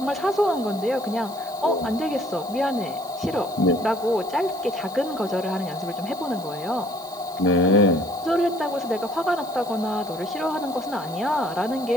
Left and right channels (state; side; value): noise; right; hiss, 20 dB below the sound